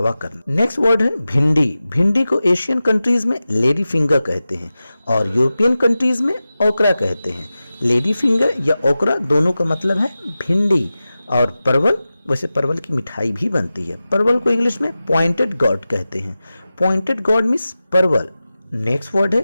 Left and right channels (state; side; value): inverted; both; correlation -0.94